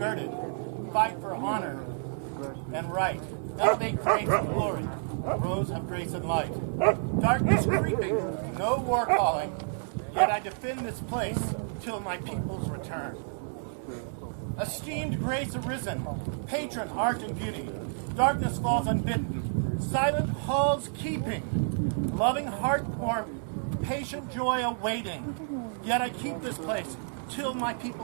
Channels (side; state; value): left; silent; digital silence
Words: fight for honor and right, elevate grace and glory, rose of grace and light. Darkness creeping, no war calling, yet I defend this place till my people's return. Esteemed grace arisen, patron art and beauty, darkness falls unbidden, silent halls keeping, loving heart warm, patient joy awaiting, yet I keep this place till my